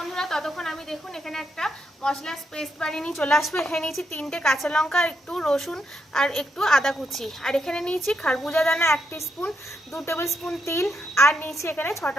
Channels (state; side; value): normal; both; correlation 0.80